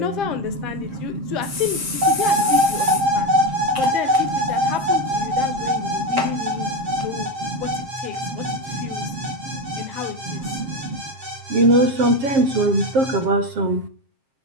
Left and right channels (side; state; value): left; late; 7.5 ms